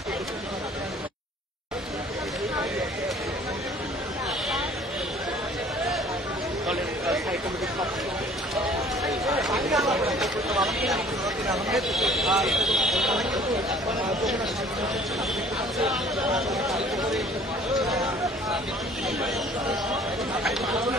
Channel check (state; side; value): normal; both; correlation 0.52